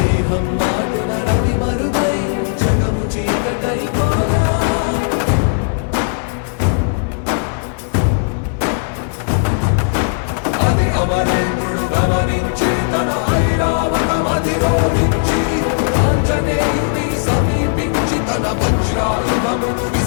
నాటున రవి మరుగై జగము చీకటై అది అమరేంద్రుడు గమనించి తన ఐరావతమది రోడించి ఆంజనేయుని సమీపించి తన వజ్రాయుధము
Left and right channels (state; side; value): silent; right; 58 dB below the other